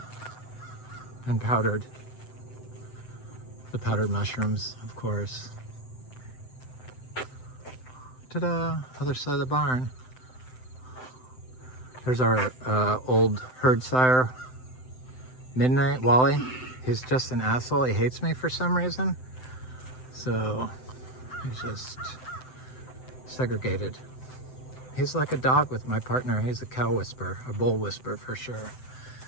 And powdered. The powdered mushrooms, of course. Ta-da! Other side of the barn. There's our old herd sire, Midnight, Wally. He's just an asshole. He hates me for some reason. So he's just segregated. He's like a dog with my partner. He's a cow whisperer, a bull whisperer for sure.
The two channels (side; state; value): right; late; 7.8 ms